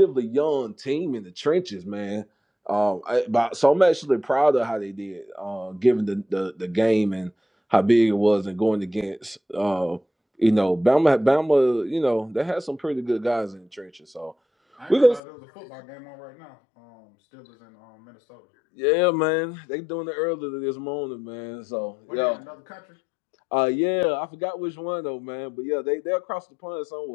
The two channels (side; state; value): right; drops out; at 15.2 s